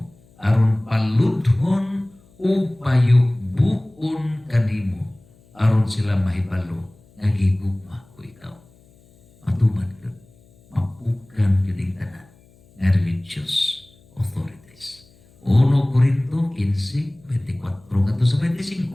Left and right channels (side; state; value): left; noise; hum, 29 dB below the sound